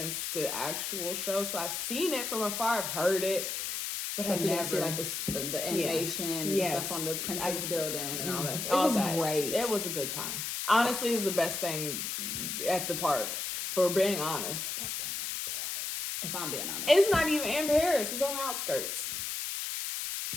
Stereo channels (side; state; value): left; noise; hiss, 3 dB below the sound